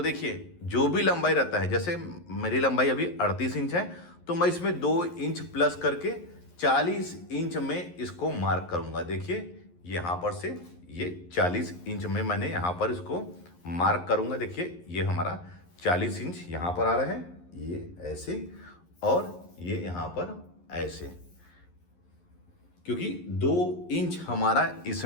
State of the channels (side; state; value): right; late; 11 ms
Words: देखिए, जो भी लंबाई रहता है, जैसे मेरी लंबाई अभी 38 इंच है, तो मैं इसमें 2 इंच प्लस करके 40 इंच में इसको मार्क करूंगा। देखिए, यहाँ पर से ये 40 इंच में मैंने यहाँ पर इसको मार्क करूंगा। देखिए, ये हमारा 40 इंच यहाँ पर आ रहा है, ये ऐसे और ये यहाँ पर ऐसे, क्योंकि 2 इंच हमारा